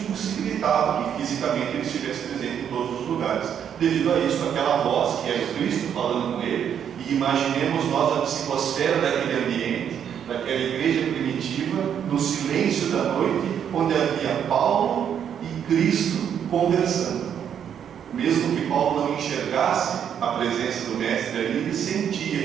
impossibilitava que fisicamente ele estivesse presente em todos os lugares. Devido a isso, aquela voz que era o Cristo falando com ele, e imaginemos nós a psicosfera daquele ambiente, daquela igreja primitiva, no silêncio da noite, onde havia Paulo e Cristo conversando. Mesmo que Paulo não enxergasse a presença do Mestre ali, ele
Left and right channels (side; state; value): left; quieter; 8.6 dB